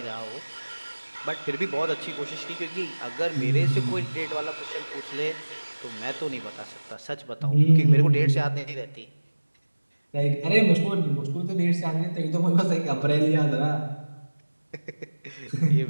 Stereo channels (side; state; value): both; inverted; correlation -1.00